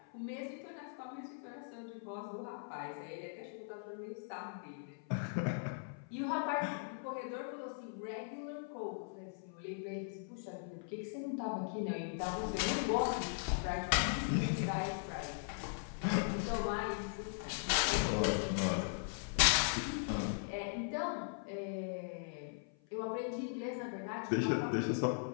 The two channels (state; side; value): silent; right; 52 dB below the other